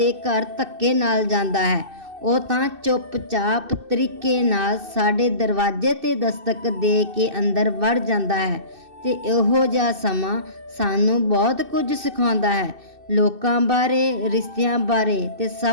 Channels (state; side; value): late; left; 2.6 ms